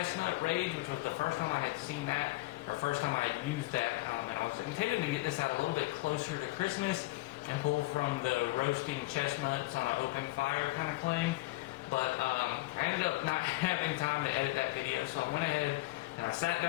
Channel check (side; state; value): right; quieter; 20.7 dB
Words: Rage, which was the first time I had seen that, or first time I had used that, and I was intending to get this out a little bit closer to Christmas and pull from the roasting chestnuts on an open fire kind of claim. But I ended up not having time to edit that video, so I went ahead and I sat